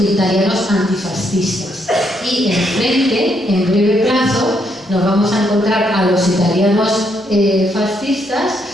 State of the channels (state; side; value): normal; both; correlation 0.75